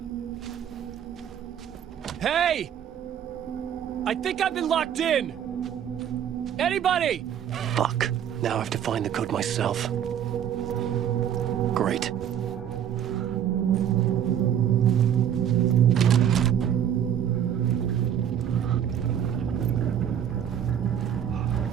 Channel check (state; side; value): quieter; left; 9.5 dB